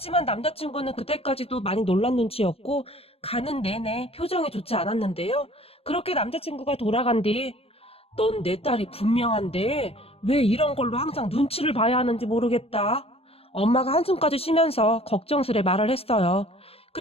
남자친구는 그때까지도 많이 놀란 눈치였고 가는 내내 표정이 좋지 않았는데요. 그렇게 남자친구가 돌아간 뒤 넌 내 딸이 분명한데 왜 이런 걸로 항상 눈치를 봐야 하는지 모르겠다. 엄마가 한숨까지 쉬면서 걱정스레 말을 했어요.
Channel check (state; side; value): late; right; 0.28 ms